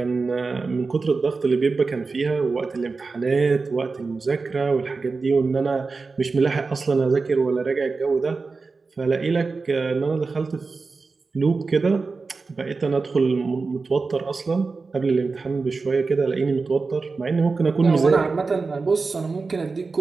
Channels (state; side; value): quieter; left; 4.2 dB